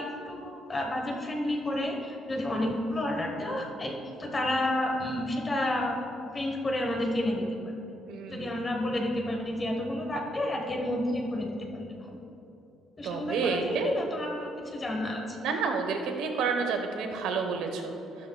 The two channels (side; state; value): both; normal; correlation 0.74